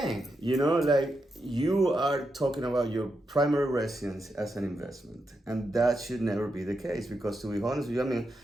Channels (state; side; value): normal; both; correlation 0.85